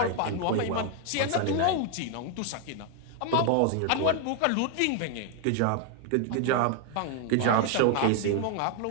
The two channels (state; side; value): different; both; correlation 0.00